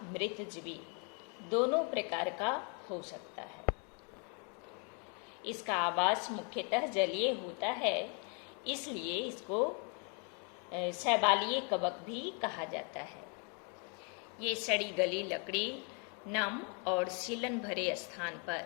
दोनों प्रकार का हो सकता है। इसका आवास मुख्यतः जलीय होता है, इसलिए इसको शैवालीय कवक भी कहा जाता है। ये सड़ी गली लकड़ी, नम और सीलन भरे स्थान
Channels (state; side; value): quieter; right; 37.6 dB